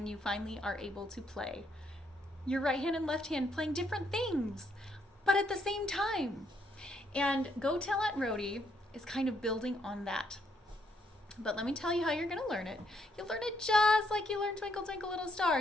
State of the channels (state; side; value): normal; both; correlation 0.73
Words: you finally are able to play your right hand and left hand playing different things, but at the same time. And Go Tell Aunt Rhody is kind of building on that. But let me tell you how you're going to learn it. You'll learn it just like you learned Twinkle Twinkle Little